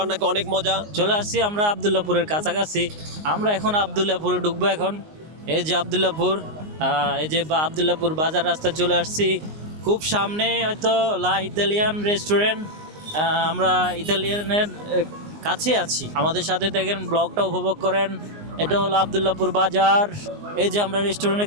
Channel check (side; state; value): left; late; 19 ms